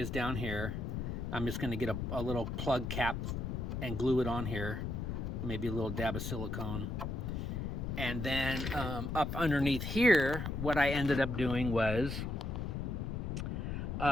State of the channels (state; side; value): noise; left; rumble, 3 dB below the sound